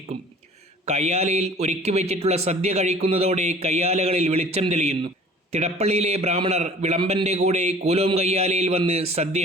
കയ്യാലയിൽ ഒരുക്കി വെച്ചിട്ടുള്ള സദ്യ കഴിക്കുന്നതോടെ കയ്യാലകളിൽ വെളിച്ചം തെളിയുന്നു. തിടപ്പള്ളിയിലെ ബ്രാഹ്മണർ വിളമ്പൻ്റെ കൂടെ കൂലോം കയ്യാലയിൽ വന്ന്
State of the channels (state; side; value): normal; both; correlation 0.48